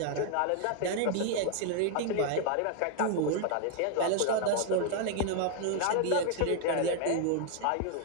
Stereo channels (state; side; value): different; both; correlation 0.00